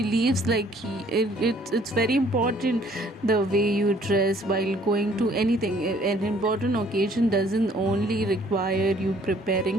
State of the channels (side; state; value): both; normal; correlation 0.60